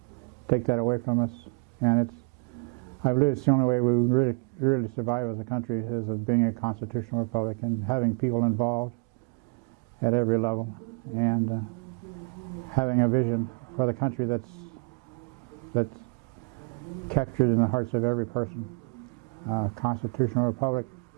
take that away from us. And I believe it's the only way we really survive as a country, is of being a constitutional republic and having people involved at every level, and having a vision for the country that's captured in the hearts of every person. Constitutional republic,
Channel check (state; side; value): quieter; left; 33.7 dB